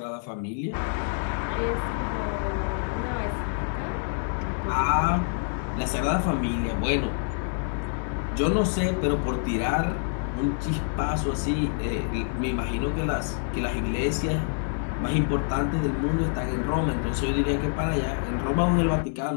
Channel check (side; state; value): right; silent; digital silence